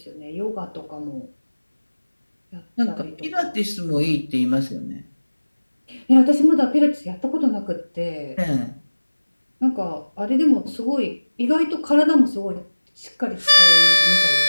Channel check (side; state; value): both; inverted; correlation -1.00